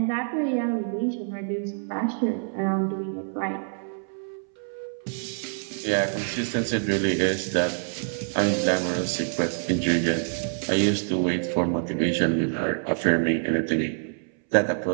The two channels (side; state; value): left; silent; 61 dB below the other